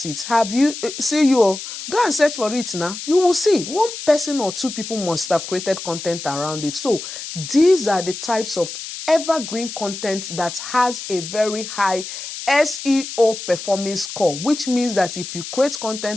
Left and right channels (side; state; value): left; noise; hiss, 9 dB below the sound